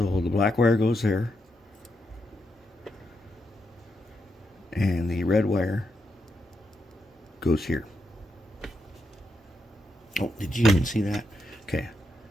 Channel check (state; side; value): normal; both; correlation 0.83